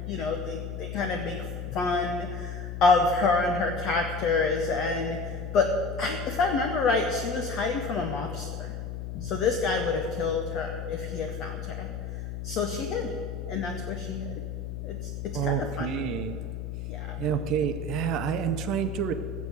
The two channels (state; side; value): noise; left; hum, 6 dB below the sound